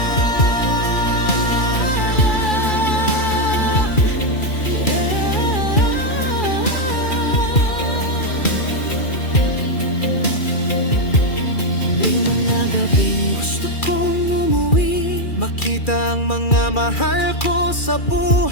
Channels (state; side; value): late; right; 2.4 ms